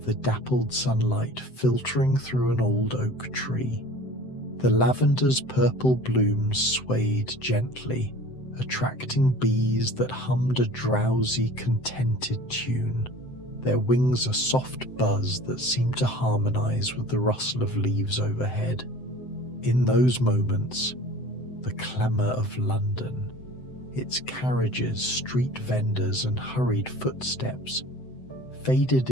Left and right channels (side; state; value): right; late; 7.8 ms